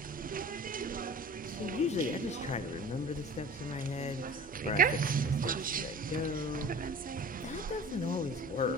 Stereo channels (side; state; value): both; normal; correlation 0.41